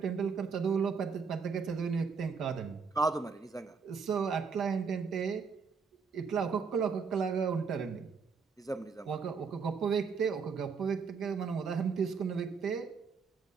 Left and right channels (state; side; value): quieter; left; 5.6 dB